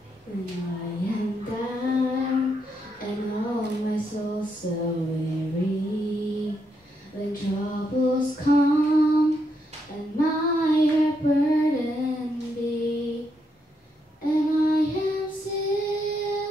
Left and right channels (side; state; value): both; normal; correlation 0.79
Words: When I am down and all my soul so weary, when troubles come and my heart burden be, and I am